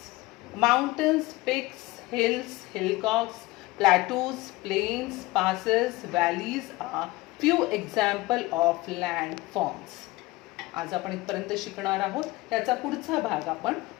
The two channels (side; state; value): right; quieter; 20.5 dB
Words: Mountains, peaks, hills, hillocks, plateaus, plains, passes, valleys are few examples of landforms. आज आपण इथपर्यंत शिकणार आहोत. याचा पुढचा भाग आपण